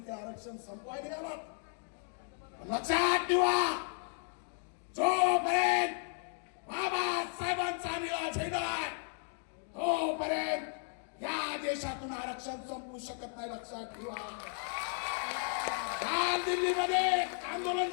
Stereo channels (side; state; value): right; silent; 55 dB below the other